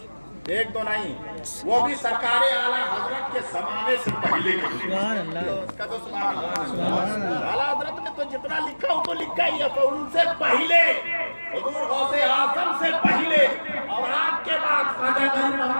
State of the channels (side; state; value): both; inverted; correlation -1.00